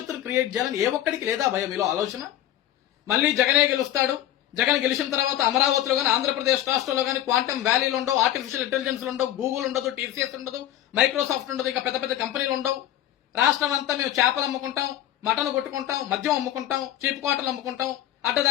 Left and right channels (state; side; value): quieter; right; 12.7 dB